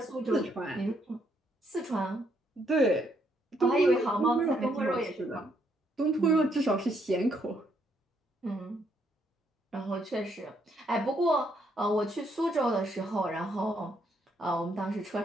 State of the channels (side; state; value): both; normal; correlation 0.73